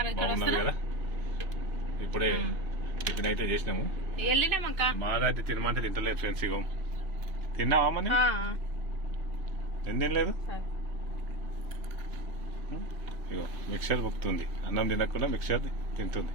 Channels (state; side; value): late; left; 2.9 ms